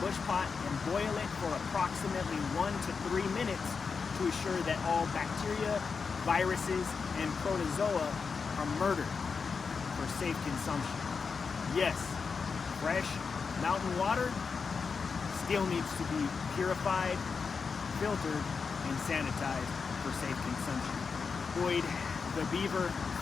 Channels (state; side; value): quieter; right; 5.3 dB